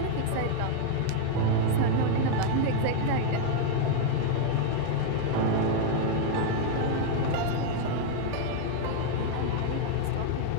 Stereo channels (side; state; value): both; different; correlation 0.00